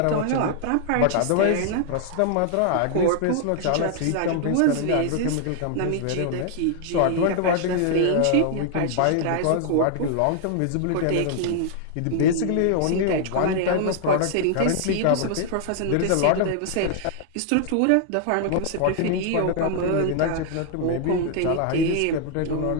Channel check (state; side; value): different; both; correlation 0.00